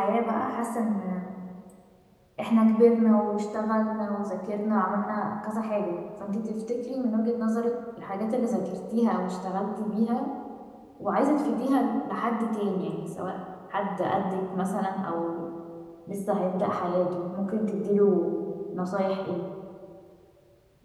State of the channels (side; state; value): both; identical; correlation 1.00